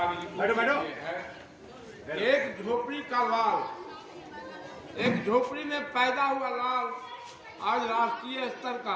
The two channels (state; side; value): identical; both; correlation 1.00